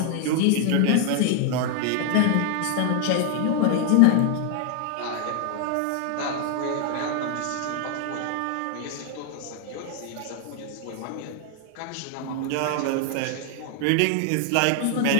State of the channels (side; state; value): both; different; correlation 0.00